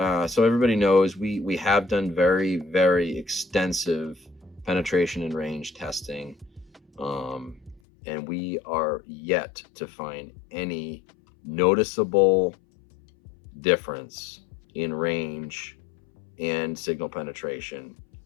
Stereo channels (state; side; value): drops out; right; at 7.8 s